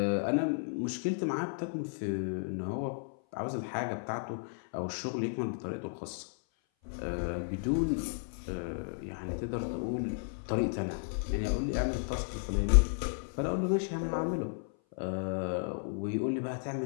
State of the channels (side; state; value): right; silent; 55 dB below the other